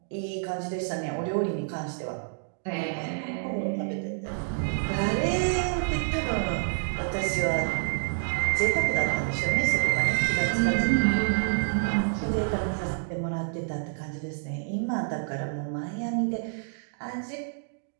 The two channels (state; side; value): silent; left; digital silence